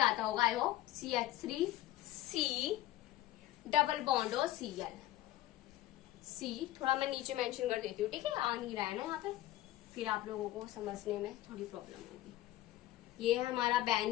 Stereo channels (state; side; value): quieter; right; 14.9 dB